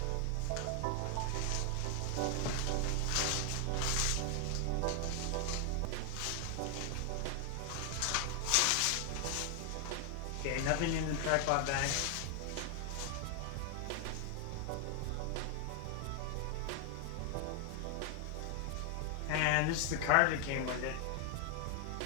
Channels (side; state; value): both; different; correlation 0.00